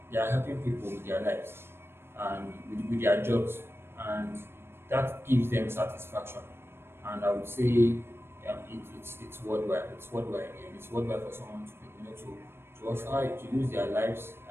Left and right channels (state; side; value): late; left; 0.12 ms